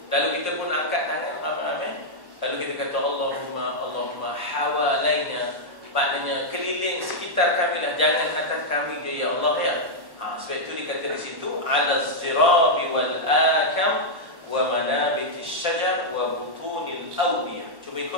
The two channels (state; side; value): late; left; 1.1 ms